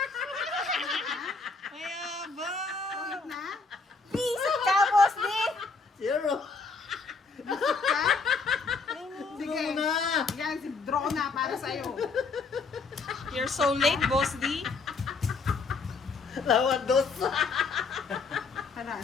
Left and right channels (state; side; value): quieter; right; 4.4 dB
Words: Kaya ba? Ulit na? Visit ka, boss D! Zero. Ha? Sige na. Yan, si draw na para sa'yo. You're so late, boss D. Lawan dos.